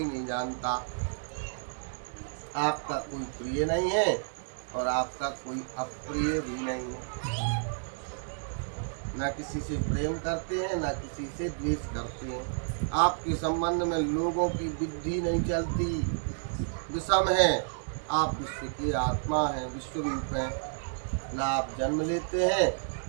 नहीं जानता। आपका कोई प्रिय नहीं है और आपका कोई अप्रिय भी नहीं है। न किसी से प्रेम करते हैं, न किसी से द्वेष करते हैं। आपके संबंध में लोगों की बुद्धि नहीं चलती, विषम है। आप विश्व की आत्मा हैं, विश्व रूप हैं। न आप जन्म लेते हैं,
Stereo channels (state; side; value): silent; left; digital silence